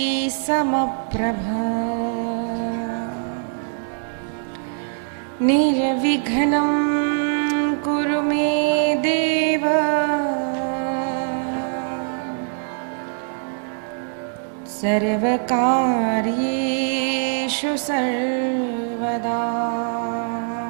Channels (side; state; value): left; silent; digital silence